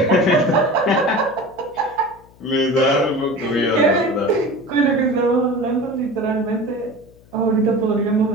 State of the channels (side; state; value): left; noise; hum, 27 dB below the sound